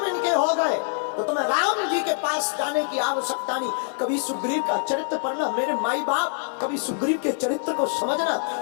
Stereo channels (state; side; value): silent; right; 55 dB below the other